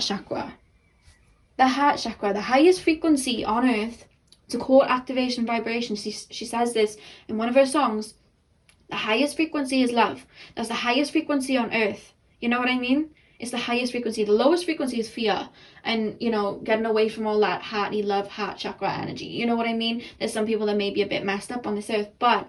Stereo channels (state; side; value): identical; both; correlation 1.00